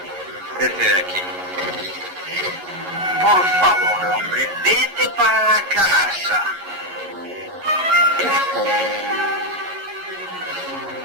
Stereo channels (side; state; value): left; late; 11 ms